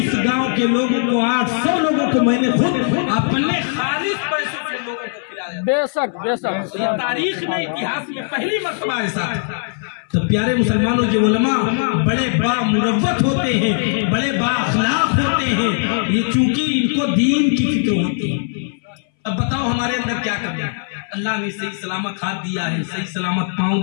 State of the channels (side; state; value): right; silent; 62 dB below the other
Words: گاؤں کے لوگوں کو 800 لوگوں کو میں نے خود اپنے خالص پیسوں سے لوگوں کو کھلایا۔ بے شک بے شک یہ تاریخ میں اتہاس میں پہلی مرتبہ ایسا ہے۔ تو پیارے مسلمانوں، یہ علماء بڑے بامروت ہوتے ہیں، بڑے با اخلاق ہوتے ہیں، یہ چونکہ ان کو دین کی فکر ہوتی ہے۔ اب بتاؤ ہمارے اندر کیا کرنا ہے؟ اللہ نے صحیح سلامت ہاتھ دیا ہے، صحیح سلامت پاؤں